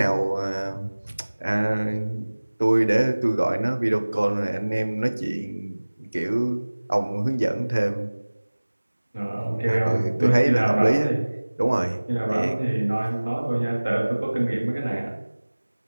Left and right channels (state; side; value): inverted; both; correlation -1.00